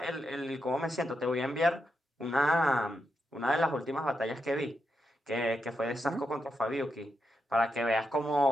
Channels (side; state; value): both; normal; correlation 0.85